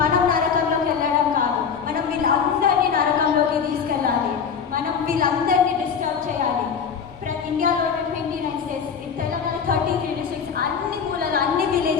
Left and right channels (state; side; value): quieter; right; 6.7 dB